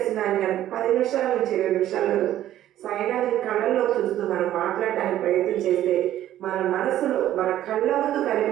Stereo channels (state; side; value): quieter; left; 12.7 dB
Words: 10 నిమిషాల నుంచి 20 నిమిషాలు సాయినాథుని కళ్ళల్లో చూస్తూ మనం మాట్లాడడానికి ప్రయత్నం చేస్తే మన మనసులో మన కళ్ళ ముందు